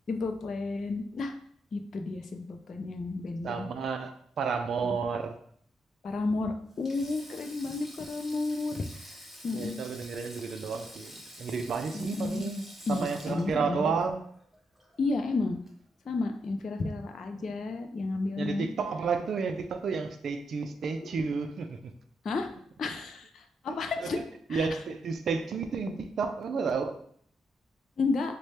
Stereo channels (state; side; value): normal; both; correlation 0.79